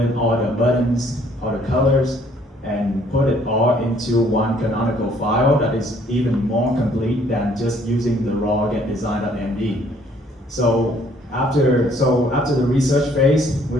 all the buttons, all the colors, and put it all into one canonical file that is even more complete than just using the raw getdesign.md. So after the research phase,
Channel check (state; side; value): normal; both; correlation 0.62